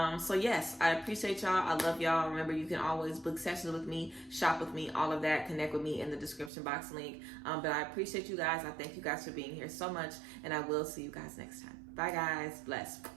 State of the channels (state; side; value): drops out; left; at 6.5 s